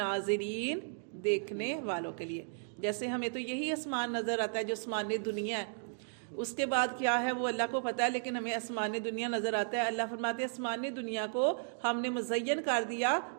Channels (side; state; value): left; silent; digital silence